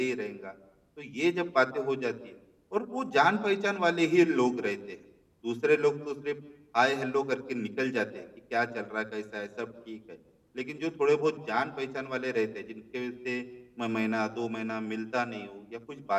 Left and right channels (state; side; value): identical; both; correlation 1.00